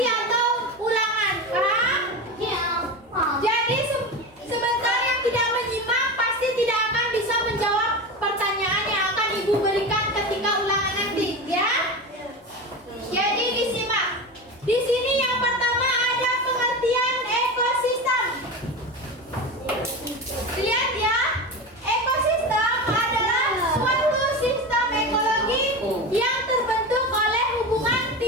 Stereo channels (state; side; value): normal; both; correlation 0.24